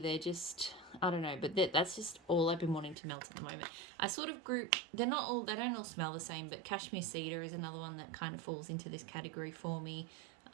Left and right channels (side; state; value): left; drops out; at 3.0 s